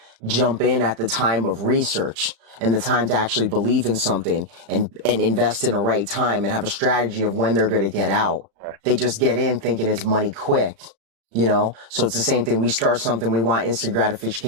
jump in at the time of research and the time to actually believe in something and invest in a right time and have a strategy of when they're going to get out. They just get in thinking it's money quick, you know? So it's the same thing. We start something, we want instant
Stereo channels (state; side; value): late; left; 35 ms